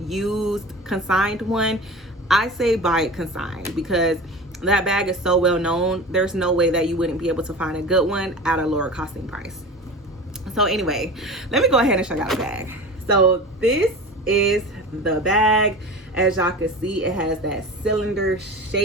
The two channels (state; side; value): normal; both; correlation 0.33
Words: consigned one, I say buy it consigned, because that bag is so well known. There's no way that you wouldn't be able to find a good one at a lower costing price. So anyway, let me go ahead and show y'all the bag. So this is the bag. As y'all can see, it has that cylinder